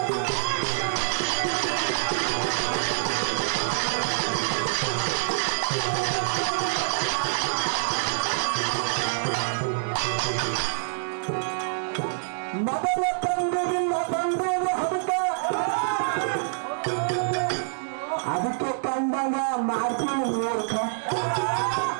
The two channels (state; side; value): silent; left; digital silence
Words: ಮೊದಲ ತಂಗುವಿಲ್ಲ ಬಂದೂರು ಹಡುಕ ಅದಕ್ಕೆ ಕಂಡಂಗ ಮಾಡ್ತೀನಿ ಮೂರ್ಖ